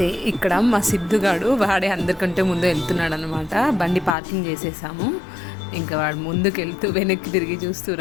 ఇక్కడ మా సిద్ధుగాడు వాడే అందరికంటే ముందు వెళ్తున్నాడు అనమాట. బండి పార్కింగ్ చేసేసాము, ఇంకా వాడు ముందుకు వెళ్తూ వెనక్కి తిరిగి చూస్తూ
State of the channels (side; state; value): right; drops out; at 4.2 s